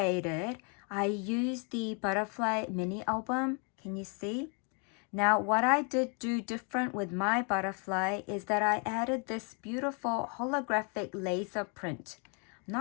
it, I used the butterfly mini album. Can you see? Now, what I did do different with my butterfly is that I added this beautiful holographic laser print. I'm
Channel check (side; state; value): right; quieter; 37.4 dB